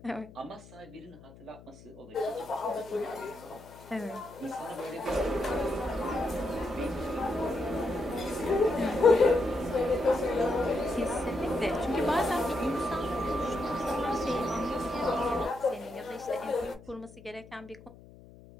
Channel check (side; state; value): left; noise; hum, 20 dB below the sound